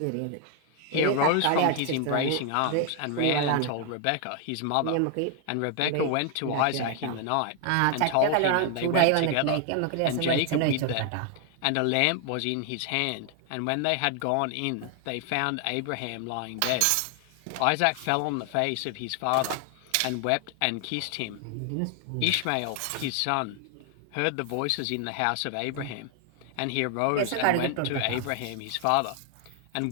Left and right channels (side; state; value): both; different; correlation 0.00